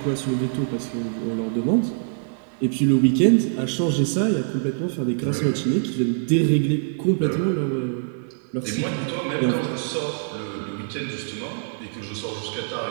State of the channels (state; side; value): silent; left; digital silence